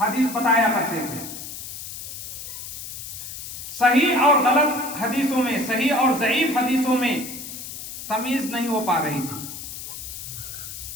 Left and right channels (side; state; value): left; noise; hiss, 9 dB below the sound